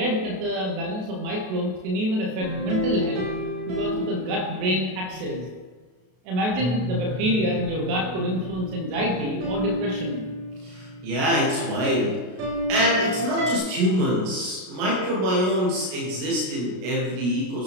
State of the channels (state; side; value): late; left; 32 ms